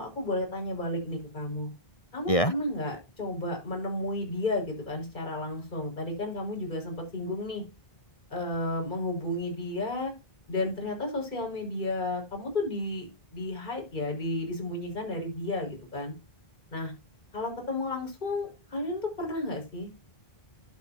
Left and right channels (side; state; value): right; late; 1.6 ms